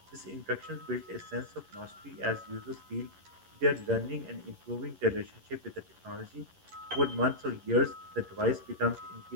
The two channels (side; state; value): left; late; 11 ms